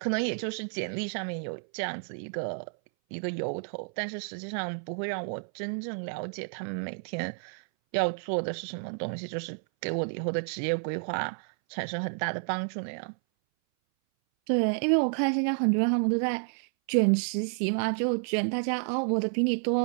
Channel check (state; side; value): silent; left; 58 dB below the other